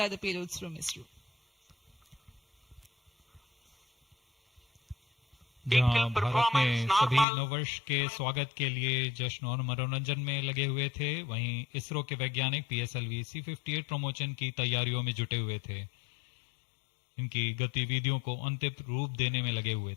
the payloads from ISRO. जहां भारत में सभी नववर्ष के स्वागत के लिए जश्न और मनोरंजन में लगे हुए थे, वहीं इसरो के वैज्ञानिक PSLV-C58 प्रमोशन की तैयारियों में जुटे हुए थे। इनकी गतिविधियों को अंतिम रूप देने में लगे हुए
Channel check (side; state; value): right; drops out; at 7.2 s